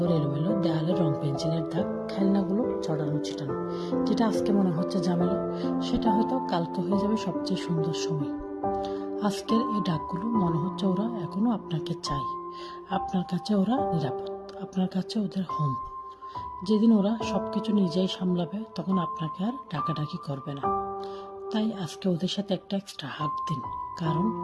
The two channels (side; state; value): both; identical; correlation 1.00